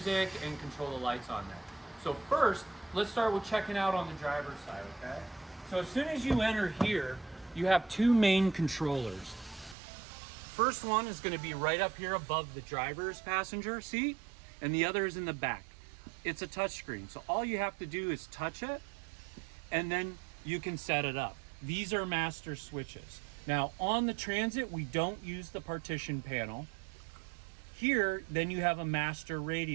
and control the lights on there. So first, let's start with checking out on the driver's side, okay? So as soon as you enter here, you have two main controllers. First one is going to be right up here above the driver's passenger seat, and the other is in the back. It's a touch screen, so all you have to do is touch it and then you can set it up. These are master switches. Now on the Transit, we don't use the partition panel. Here, then you have a master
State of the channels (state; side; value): drops out; left; at 9.8 s